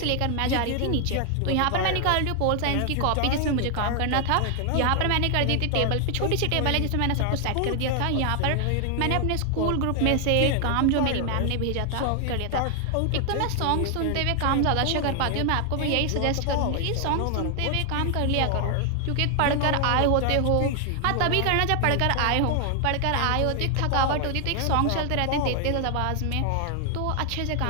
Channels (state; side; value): different; both; correlation 0.00